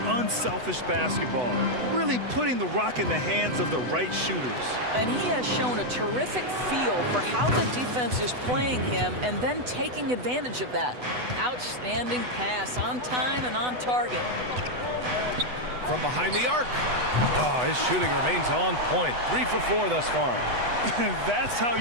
unselfish basketball, really putting the rock in the hands of the right shooters. And he has shown a terrific feel for how the defense is playing him and then taking advantage of that. Outstanding pass, on time and on target. From behind the arc. Oh, his shooting remains on point. 3 for 4 thus far. That's how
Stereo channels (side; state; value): left; late; 8.0 ms